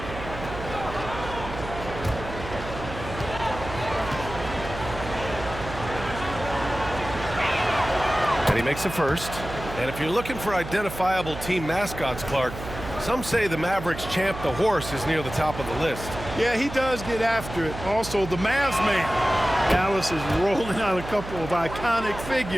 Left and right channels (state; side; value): noise; right; hum, 10 dB below the sound